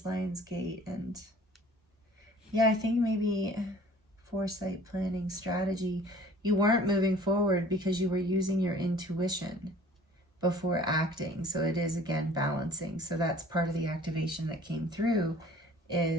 Lion's Gate. And yeah, I think maybe foresight, planning, strategy. You weren't moving forward because you were using your intuition before acting. So it is, again, balancing. So that's part of the activation that came through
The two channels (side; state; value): both; normal; correlation 0.50